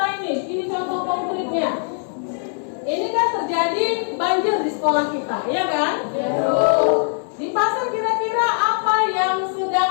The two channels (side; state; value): right; silent; digital silence